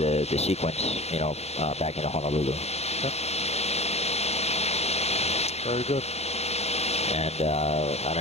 sequence, back into Honolulu. Okay. Very good. And I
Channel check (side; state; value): right; late; 0.31 ms